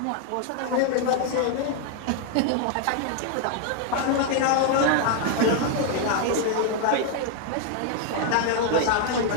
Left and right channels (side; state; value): both; different; correlation 0.00